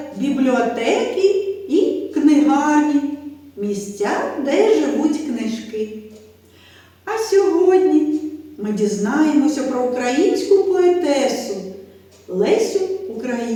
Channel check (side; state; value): both; identical; correlation 1.00